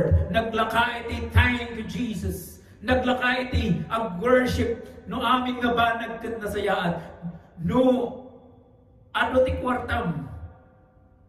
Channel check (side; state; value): both; identical; correlation 1.00